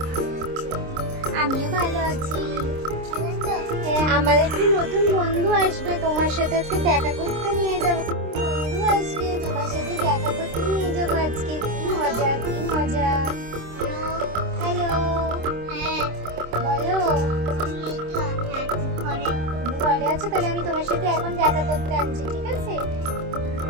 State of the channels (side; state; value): left; late; 26 ms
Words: আমিও ভালো আছি। হ্যাঁ, আমার একটি নতুন বন্ধু আসবে, তোমার সাথে আজকে দেখা করতে নিয়ে যাব। বন্ধু আসবে, তোমার সাথে দেখা করতে নিয়ে যাব আজকে। কি মজা, কি মজা। হ্যালো, বলো। তুমি ঘরে আছো? তাহলে আমি তোমার সাথে এখন দেখা করতে আনছি, ঠিক আছে?